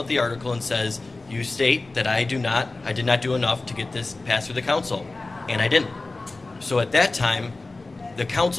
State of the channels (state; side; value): quieter; right; 3.3 dB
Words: the article and says, "You state that I did not do enough to get this passed through the council," and I didn't. So at that time, the